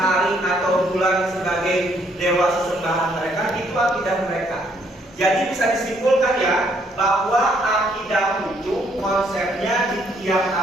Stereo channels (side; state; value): both; normal; correlation 0.68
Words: atau bulan sebagai dewa sesembahan mereka, itu akidah mereka. Jadi bisa disimpulkan ya, bahwa akidah itu konsepnya di tiap